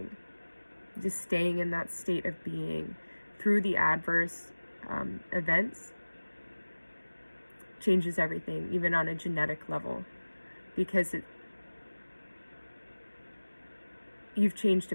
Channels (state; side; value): inverted; both; correlation -1.00